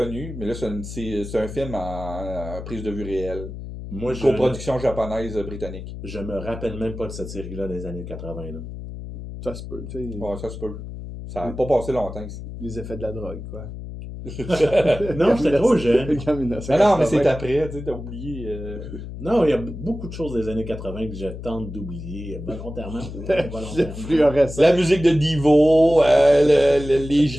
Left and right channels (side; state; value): left; noise; hum, 10 dB below the sound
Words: mais là, c'est un film en prise de vue réelle. Moi, Une coproduction japonaise-britannique. Je me rappelle même pas de cette série-là des années 80. Là. Ça se peut, tu sais. Ouais, ça se peut. Ça n'a pas passé longtemps ici. Les effets de la drogue, quoi. Non, j'étais trop jeune. Non, mais c'est après, tu sais, t'as oublié. Non, il y a beaucoup de choses des années 80 que je tente d'oublier volontairement ou involontairement. Fluorescent. La musique de Divo, les